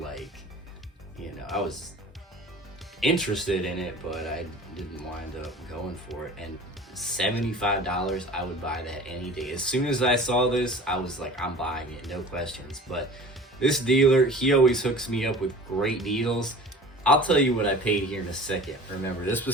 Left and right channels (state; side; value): normal; both; correlation 0.42